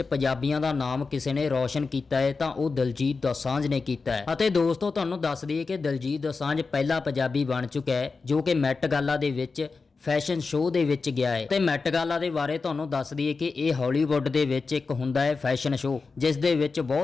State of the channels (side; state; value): right; quieter; 4.4 dB